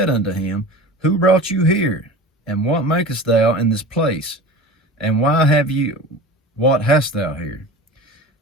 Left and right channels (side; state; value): both; normal; correlation 0.35